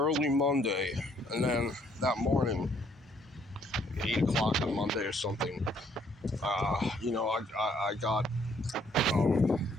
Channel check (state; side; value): normal; both; correlation 0.66